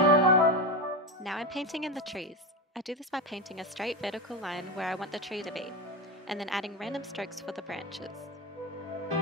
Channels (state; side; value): normal; both; correlation 0.18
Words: Now I'm painting in the trees. I do this by painting a straight vertical line where I want the tree to be, and then adding random strokes for the branches.